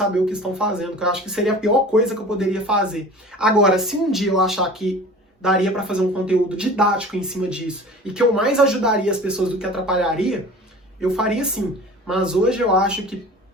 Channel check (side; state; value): both; normal; correlation 0.41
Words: o que estão fazendo, que eu acho que seria a pior coisa que eu poderia fazer. Agora, se um dia eu achar que daria para fazer um conteúdo didático em cima disso e que eu mais ajudaria as pessoas do que atrapalharia, eu faria sim. Mas hoje eu acho que